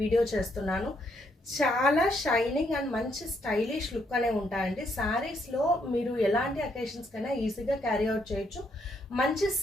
వీడియో చేస్తున్నాను. చాలా షైనింగ్ అండ్ మంచి స్టైలిష్ లుక్ అనే ఉంటాయండి. శారీస్లో మీరు ఎలాంటి అకేషన్స్ కైనా ఈజీగా క్యారీ అవుట్ చేయొచ్చు. మంచి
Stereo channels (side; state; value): both; normal; correlation 0.74